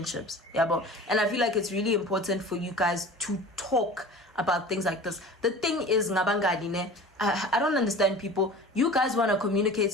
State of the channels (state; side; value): normal; both; correlation 0.39